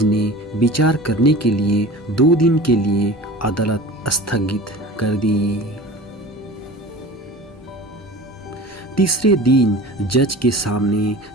ने विचार करने के लिए 2 दिन के लिए अदालत स्थगित कर दी। तीसरे दिन जज के सामने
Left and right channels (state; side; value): normal; both; correlation 0.38